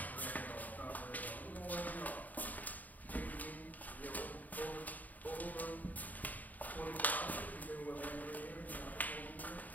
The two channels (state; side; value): late; right; 0.079 ms